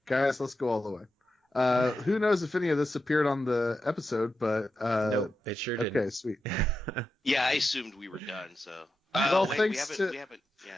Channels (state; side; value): normal; both; correlation 0.89